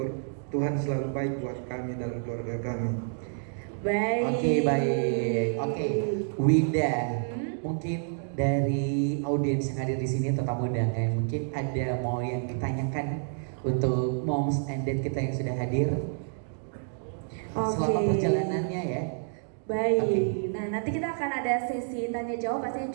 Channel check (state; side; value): silent; left; digital silence